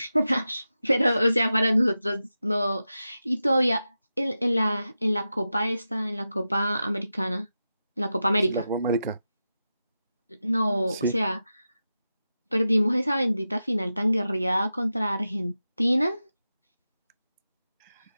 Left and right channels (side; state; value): both; inverted; correlation -0.91